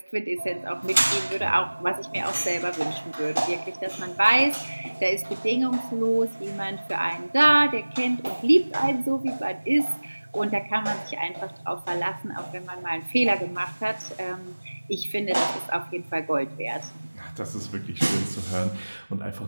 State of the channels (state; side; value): inverted; both; correlation -1.00